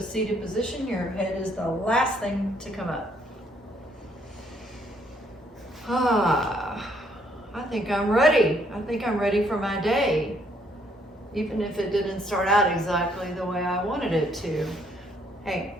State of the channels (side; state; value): both; normal; correlation 0.68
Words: seated position. Your head is the last thing to come up. I think I'm ready. I think I'm ready for my day, even if it didn't start out exactly the way I wanted it to. Hey,